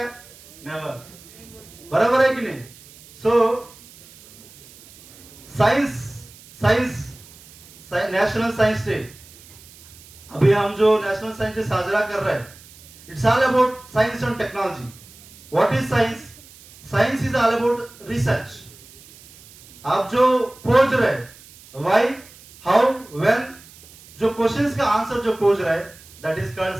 नेवर. बराबर है कि नहीं? So science national science day, अभी हम जो नेशनल साइंस डे साजरा कर रहे हैं, it's all about science end technology. What is science? Science is all about research. आप जो खोज रहे, व्हाई, हाउ, व्हेन, जो क्वेश्चंस का आंसर जो खोज रहे, that is called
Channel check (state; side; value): noise; right; hiss, 22 dB below the sound